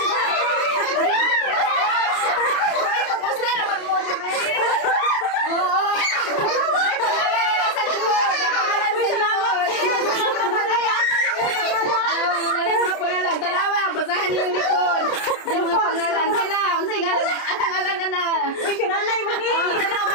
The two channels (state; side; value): late; right; 30 ms